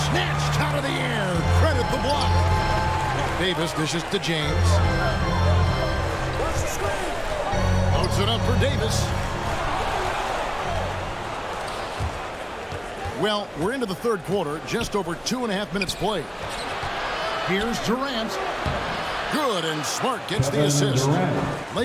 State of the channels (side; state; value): both; identical; correlation 1.00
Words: snatched out of the air. Credit the block. Davis dishes to James. Loads it up for Davis. Well, we're into the third quarter, just over 2.5 minutes played. Here's Durant. Good, and Smart gets the assist.